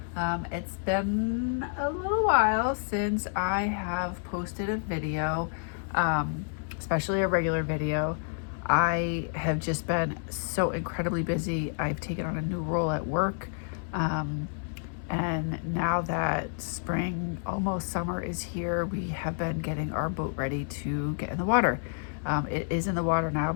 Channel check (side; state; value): right; silent; 58 dB below the other